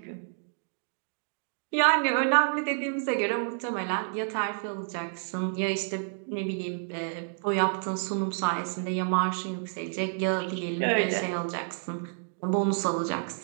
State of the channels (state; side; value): silent; left; 58 dB below the other